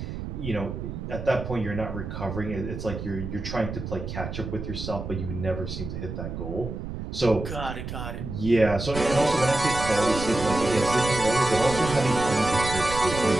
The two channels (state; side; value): noise; right; rumble, 7 dB below the sound